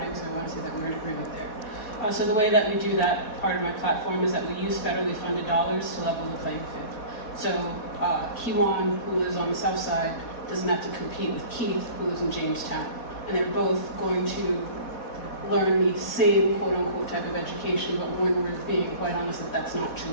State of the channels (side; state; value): right; late; 4.1 ms